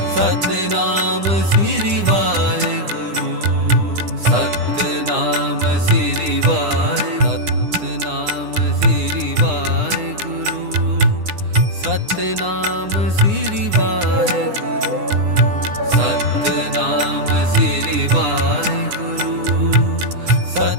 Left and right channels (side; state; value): left; late; 9.9 ms